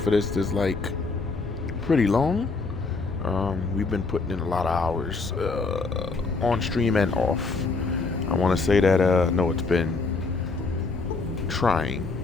for this is like pretty long. We've been putting in a lot of hours on stream and off. I want to say that no, it's been trying.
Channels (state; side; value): quieter; right; 4.0 dB